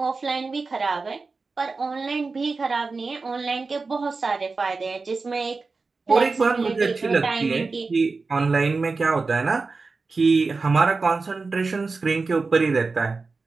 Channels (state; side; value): quieter; left; 4.1 dB